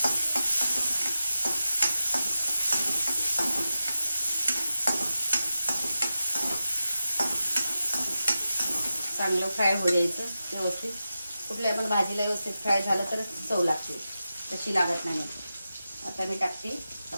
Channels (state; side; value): inverted; both; correlation -0.91